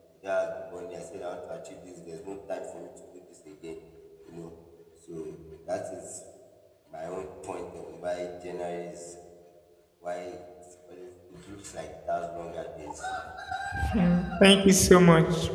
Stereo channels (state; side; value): identical; both; correlation 1.00